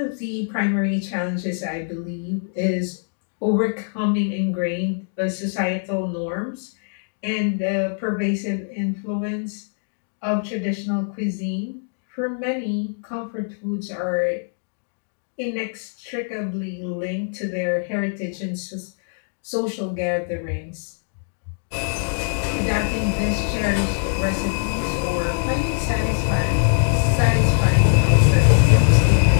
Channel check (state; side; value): silent; right; digital silence